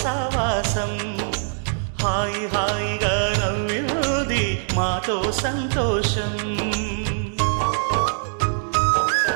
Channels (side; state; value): left; silent; digital silence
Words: సావాసం, హాయి హాయిగా నవ్వింది మాతో సంతోషం.